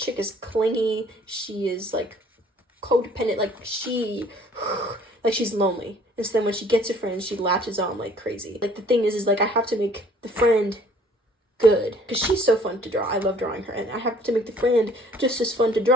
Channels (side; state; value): both; normal; correlation 0.56